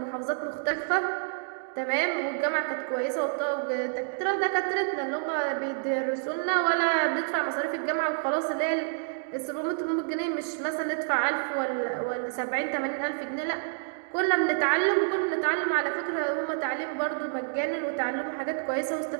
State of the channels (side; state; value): left; silent; digital silence